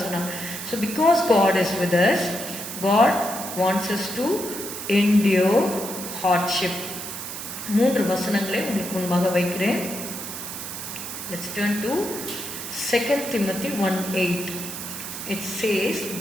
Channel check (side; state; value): right; noise; hiss, 8 dB below the sound